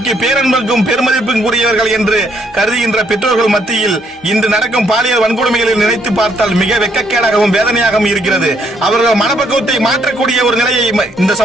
பேரன்புக்கும் பெருமதிப்பும் கூடியவர்கள் என்று கருதுகின்ற பெற்றோர்கள் மத்தியில் இன்று நடக்கும் பாலியல் வன்கொடுமைகளை நினைத்து பார்த்தால் மிக வெட்கக்கேடாகவும் வேதனையாகவும் இருக்கிறது. அவர்கள் மனப்பக்குவத்தை மாற்றக்கூடிய ஒரு நிலையை இந்த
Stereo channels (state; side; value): normal; both; correlation 0.70